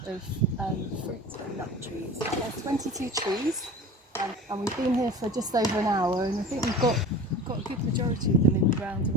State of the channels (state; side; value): normal; both; correlation 0.37